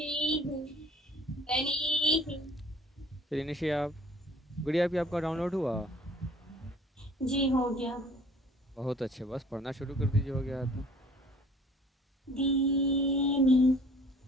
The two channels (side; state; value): both; normal; correlation 0.53